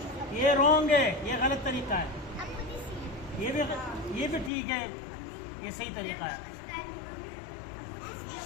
ये रॉन्ग है, ये गलत तरीका है। ये भी ठीक है, ये सही तरीका है।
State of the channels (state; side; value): drops out; right; at 4.5 s